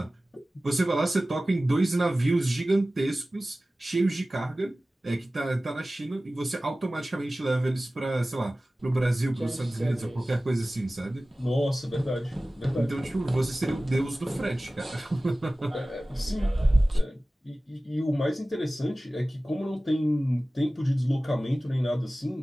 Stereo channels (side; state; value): both; normal; correlation 0.97